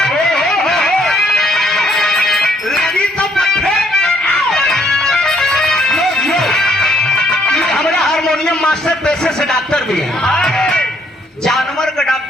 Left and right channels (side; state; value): both; normal; correlation 0.68